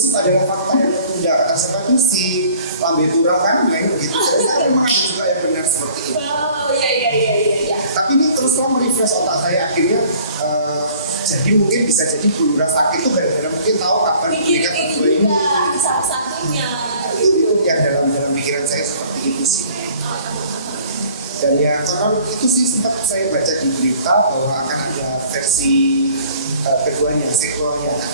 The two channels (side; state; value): both; inverted; correlation -0.53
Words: adalah fakta yang tertunda. Kata siapa itu si Lambe Turah kan main begitu. Jadi memang ada juga yang benar seperti itu. Oh iya. Tapi ini terus terang merefresh otak saya akhirnya. Jadi mungkin bisa jadi Bu Lurah sakit itu gara-gara mungkin tahu kapan mereka berdua ini. Satu-satunya. Itu yang dalam pikiran saya seperti itu sih. Dan ya karena itu sih sempat saya baca di berita bahwa akan ada versi keduanya, sequelnya